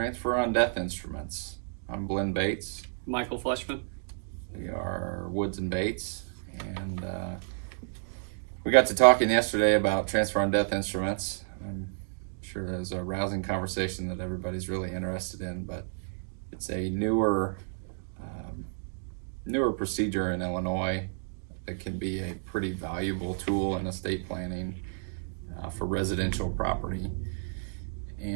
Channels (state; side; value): silent; left; digital silence